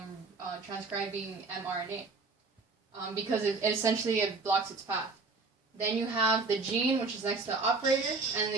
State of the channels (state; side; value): quieter; left; 3.9 dB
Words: transcribing mRNA because it essentially blocks its path. Then you have the gene, which is next to the operator, and in